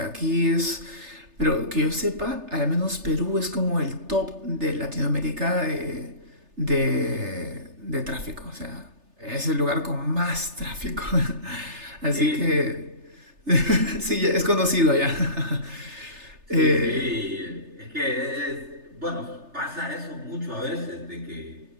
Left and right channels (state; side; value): late; left; 3.3 ms